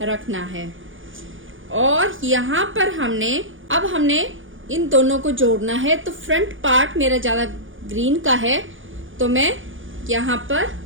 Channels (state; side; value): late; left; 0.57 ms